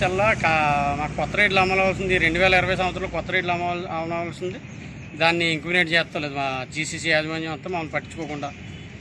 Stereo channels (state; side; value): identical; both; correlation 1.00